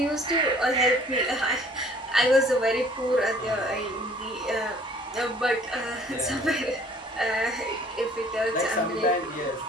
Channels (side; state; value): both; normal; correlation 0.55